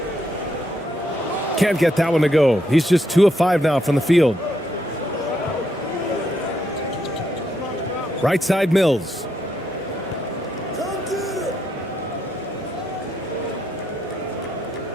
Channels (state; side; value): normal; both; correlation 0.77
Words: Can't get that one to go. He's just 2 of 5 now from the field. Right side Mills.